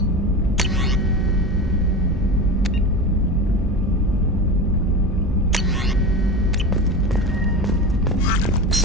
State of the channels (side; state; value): both; normal; correlation 0.27